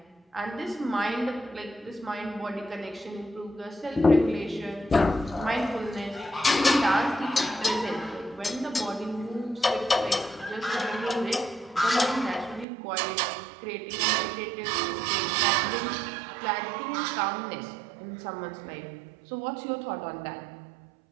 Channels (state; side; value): drops out; left; at 12.7 s